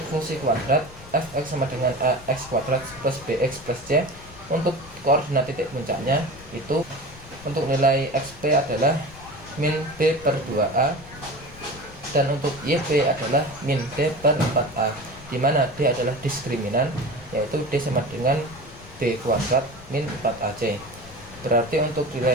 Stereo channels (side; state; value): left; noise; rumble, 19 dB below the sound